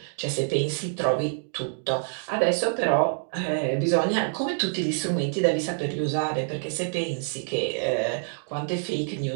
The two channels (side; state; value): left; silent; 61 dB below the other